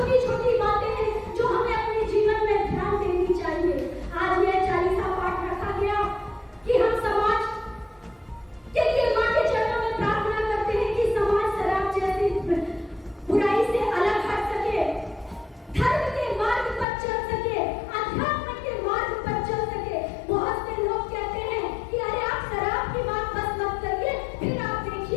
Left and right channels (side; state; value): right; drops out; at 16.9 s